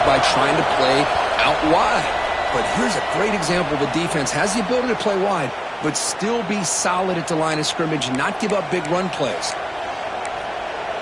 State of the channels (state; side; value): identical; both; correlation 1.00